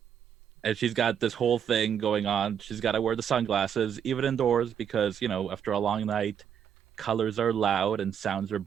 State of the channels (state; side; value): quieter; left; 8.4 dB